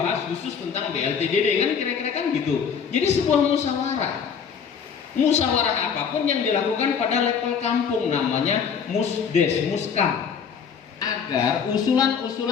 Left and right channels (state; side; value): quieter; right; 6.8 dB